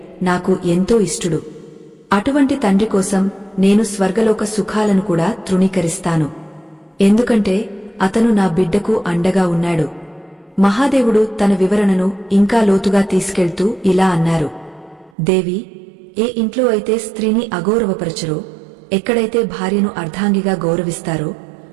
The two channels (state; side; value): drops out; left; at 15.1 s